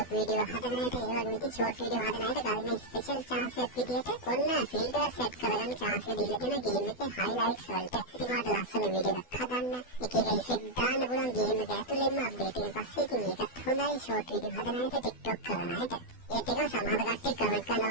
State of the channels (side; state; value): right; late; 12 ms